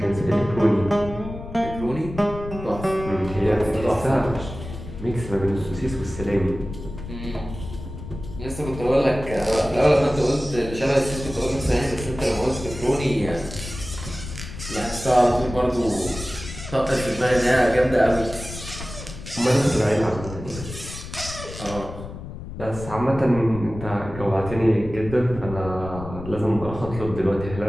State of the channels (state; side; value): noise; left; rumble, 11 dB below the sound